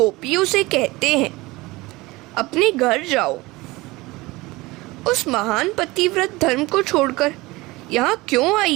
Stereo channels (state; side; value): quieter; left; 21.3 dB